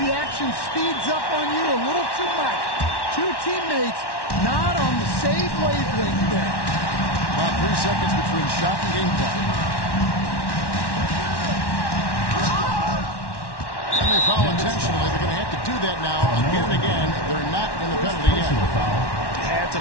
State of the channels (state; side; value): late; right; 1.1 ms